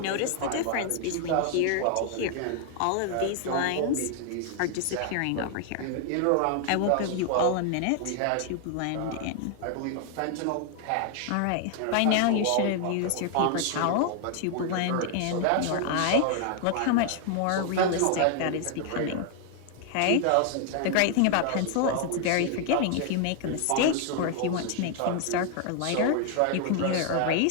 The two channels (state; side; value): different; both; correlation 0.00